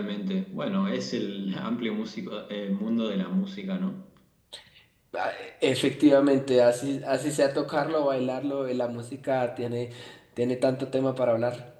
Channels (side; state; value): both; identical; correlation 1.00